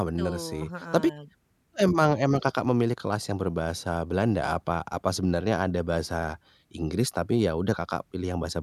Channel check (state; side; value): identical; both; correlation 1.00